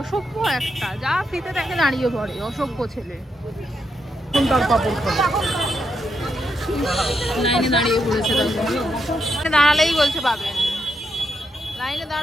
একটা, যা ফ্রিতে দেখে দাঁড়িয়ে পড়ে, অসভ্য ছেলে। তার পাপড় খাবে। লাইনে দাঁড়িয়ে পড়েছে, দাঁড়ালেই বলছে পাবেন, লাইনে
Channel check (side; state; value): both; normal; correlation 0.81